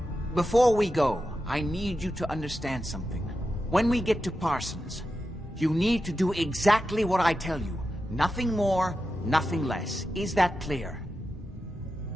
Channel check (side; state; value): both; normal; correlation 0.90